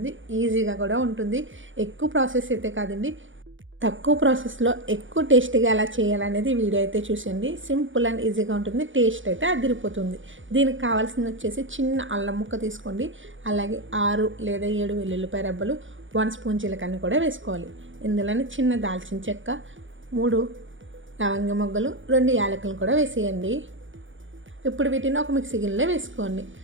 ఈజీగా కూడా ఉంటుంది. ఎక్కువ ప్రాసెస్ అయితే కాదండి, తక్కువ ప్రాసెస్లో ఎక్కువ టేస్టీగా ఎలా చేయాలనేది వీడియో అయితే చూసండి. సింపుల్ అండ్ ఈజీగా ఉంటుంది, టేస్ట్ అయితే అదిరిపోతుంది. దీనికి కావాల్సింది వచ్చేసి చిన్న అల్లం ముక్క తీసుకోండి, అలాగే 6 లేదా 7 వెల్లుల్లిపాయ రెబ్బలు, 1 స్పూన్ జీలకర్ర కూడా వేసుకోవాలి. ఇందులోనే చిన్న దాల్చిన చెక్క, 3 లవంగ మొగ్గలు, 2 యాలకులను కూడా వేసేయండి. ఇప్పుడు వీటిని ఒక మిక్సీ గిన్నెలో వేసుకోండి.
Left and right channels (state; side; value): late; left; 0.56 ms